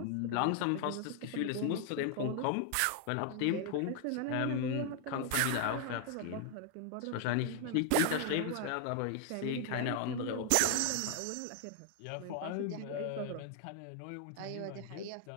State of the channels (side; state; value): both; different; correlation 0.00